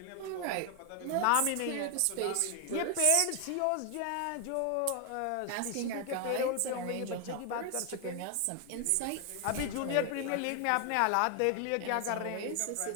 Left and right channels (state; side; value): different; both; correlation 0.00